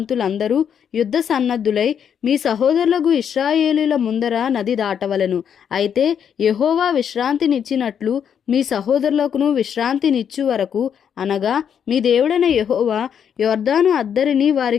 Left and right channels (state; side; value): quieter; right; 8.1 dB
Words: యుద్ధ సన్నద్ధులై మీ సహోదరులకు ఇశ్రాయేలీల ముందర నది దాటవలెను. అయితే యెహోవా విశ్రాంతినిచ్చినట్లు మీ సహోదరులకును విశ్రాంతినిచ్చు వరకు, అనగా మీ దేవుడైన యెహోవా యొర్దాను అద్దరిని